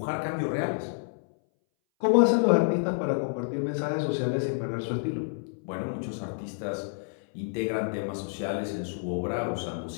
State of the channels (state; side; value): silent; right; 59 dB below the other